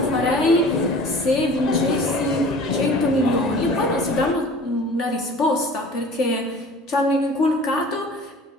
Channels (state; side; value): normal; both; correlation 0.44